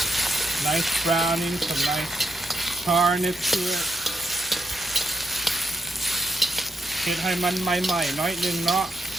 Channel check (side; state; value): both; normal; correlation 0.81